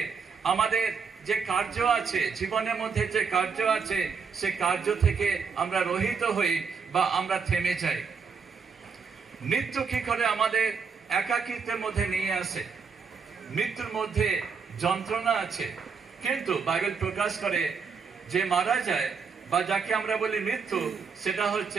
আমাদের যে কার্য আছে, জীবনের মধ্যে যে কার্য আছে, সে কার্য থেকে আমরা রহিত হই বা আমরা থেমে যাই। মৃত্যু কি করে আমাদের একাকিত্বের মধ্যে নিয়ে আসে? মৃত্যুর মধ্যে যন্ত্রণা আছে, কিন্তু বাইবেল প্রকাশ করে যে মারা যায় বা যাকে আমরা বলি মৃত্যু, সেটা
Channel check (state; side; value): quieter; left; 5.7 dB